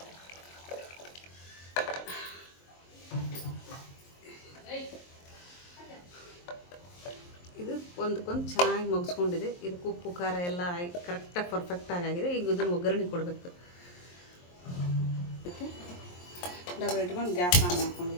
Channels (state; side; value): late; right; 23 ms